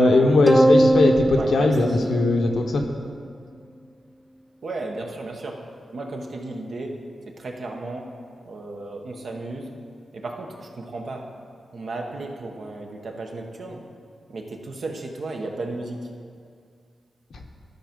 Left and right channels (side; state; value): both; normal; correlation 0.90